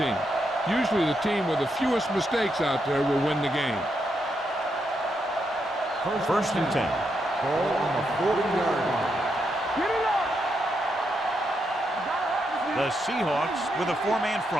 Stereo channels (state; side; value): normal; both; correlation 0.81